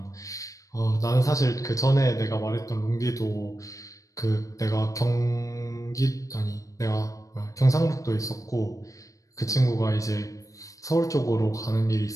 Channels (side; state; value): right; late; 0.16 ms